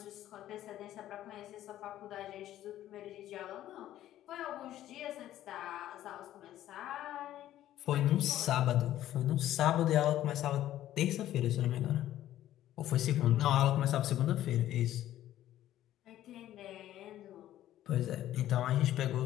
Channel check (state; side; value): quieter; right; 13.0 dB